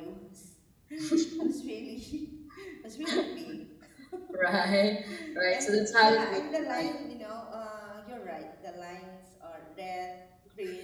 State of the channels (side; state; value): both; identical; correlation 1.00